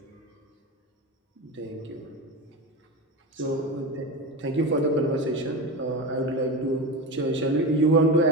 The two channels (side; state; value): both; normal; correlation 0.22